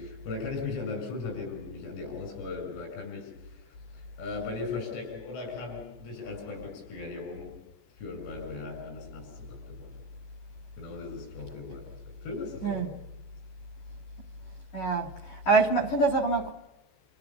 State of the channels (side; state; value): right; late; 14 ms